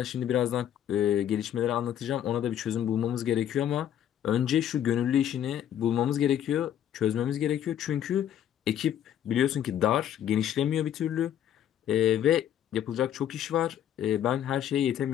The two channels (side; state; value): right; quieter; 10.4 dB